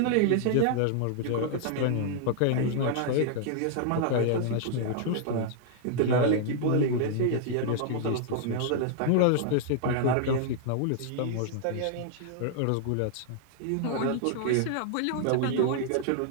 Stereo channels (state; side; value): different; both; correlation -0.01